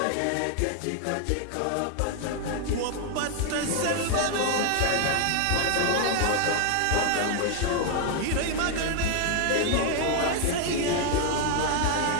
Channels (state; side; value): different; both; correlation 0.00